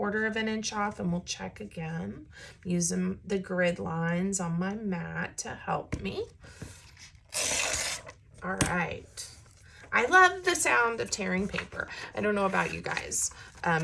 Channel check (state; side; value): identical; both; correlation 1.00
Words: inch off and we'll check again. Using the grid lines on my mat to help me. All right. I love the sound of tearing paper. I don't know about you guys.